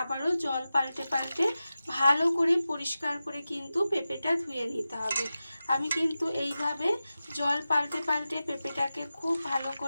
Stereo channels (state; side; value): inverted; both; correlation -0.93